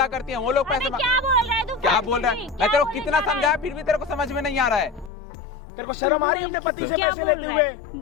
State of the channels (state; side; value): drops out; right; at 5.1 s